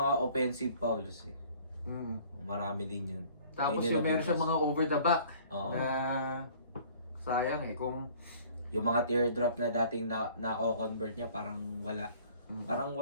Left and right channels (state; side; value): inverted; both; correlation -0.53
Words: offensive fouls eh. Mm. Marami din yun. Tapos Yun yung meron siya mga over the back. Oo. Na sayang eh. Kung Yung mga teardrop na dating nako-convert niya parang wala. Parang